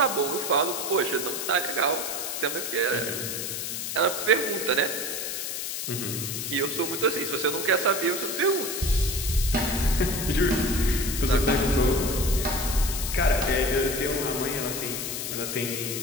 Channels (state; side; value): noise; left; hiss, 4 dB below the sound